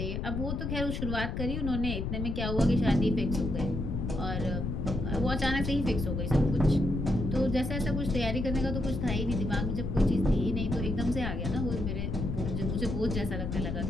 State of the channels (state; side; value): noise; left; rumble, 2 dB below the sound